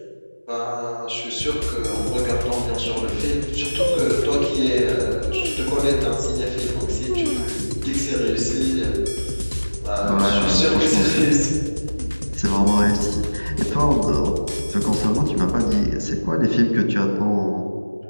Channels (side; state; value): both; inverted; correlation -1.00